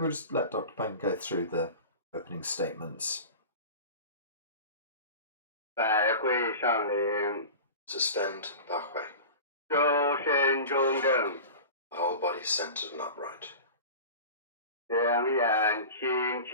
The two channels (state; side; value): inverted; both; correlation -0.34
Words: just let Dr. Pang go through the opening statements. 百会上灵， Suspend Ba Hui. 周身中正， The whole body centered and upright. 两眼轻